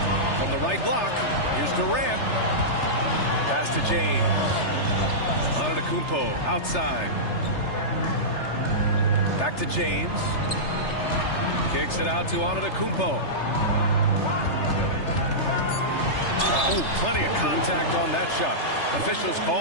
From the right block, here's Durant. Pass to James. Antetokounmpo outside. Back to James. Kicks it out to Antetokounmpo. Oh, plenty of contact on that shot. Officials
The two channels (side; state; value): right; late; 3.3 ms